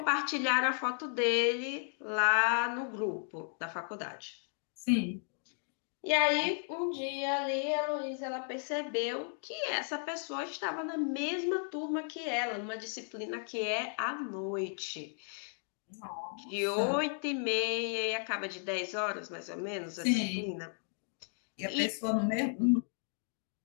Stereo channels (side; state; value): right; silent; 55 dB below the other